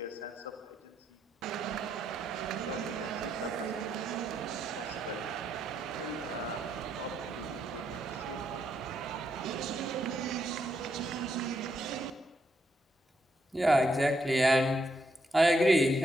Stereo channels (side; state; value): both; normal; correlation 0.78